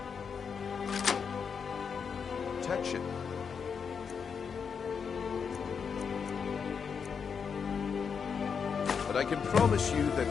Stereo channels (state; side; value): quieter; right; 6.3 dB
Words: protection. But I can promise you